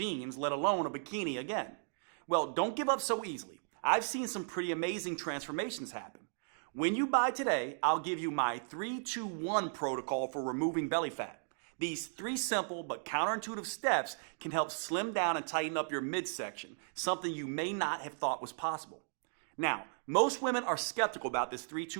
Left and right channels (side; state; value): left; silent; digital silence